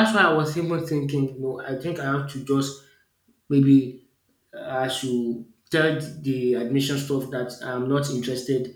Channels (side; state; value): both; identical; correlation 1.00